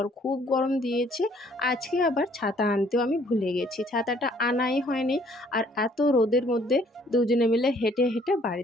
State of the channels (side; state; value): both; normal; correlation 0.61